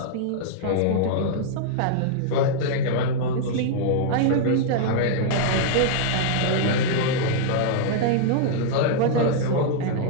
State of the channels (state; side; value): different; both; correlation -0.01